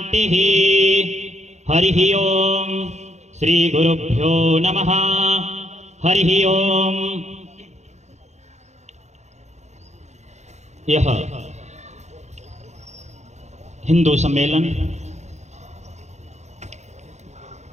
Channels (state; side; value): late; left; 0.33 ms